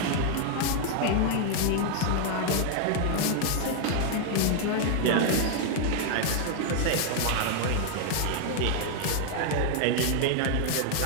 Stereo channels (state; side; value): different; both; correlation 0.00